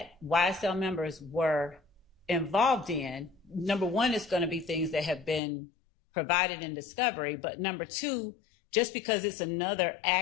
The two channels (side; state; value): right; drops out; at 5.4 s